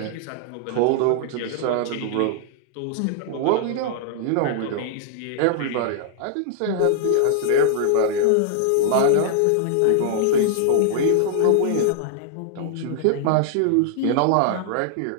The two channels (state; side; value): different; both; correlation -0.01